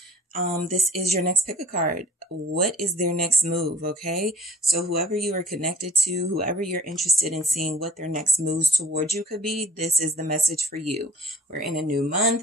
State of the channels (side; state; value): both; normal; correlation 0.49